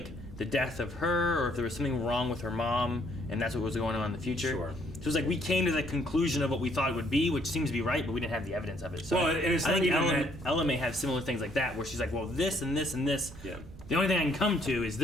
the death of her or if there was something wrong with her mom, and that's what was going on in the future. Sure. So it was like we came to the conclusion of what we thought it would be, which seems to be right, but we didn't have the evidence of it. So Well, and it's I not think even Ella may have similar things like that, where she's like, well, this and this and this. Yeah. The only thing I can come to is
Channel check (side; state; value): right; noise; rumble, 16 dB below the sound